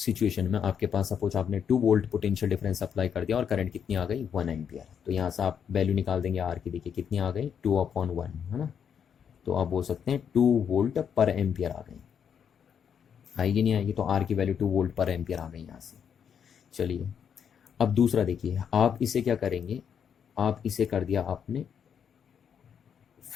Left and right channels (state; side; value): quieter; right; 7.8 dB